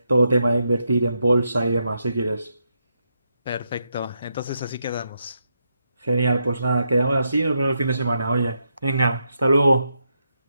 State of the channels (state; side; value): inverted; both; correlation -0.82